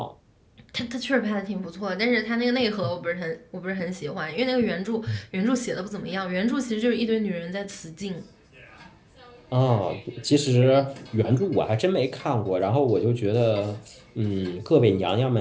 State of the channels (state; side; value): identical; both; correlation 1.00